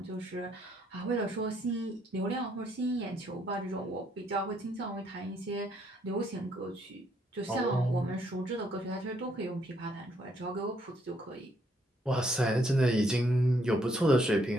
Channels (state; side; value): normal; both; correlation 0.70